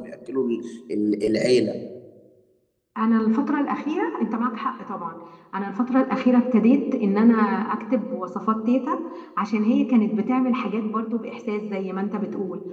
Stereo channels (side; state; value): both; identical; correlation 1.00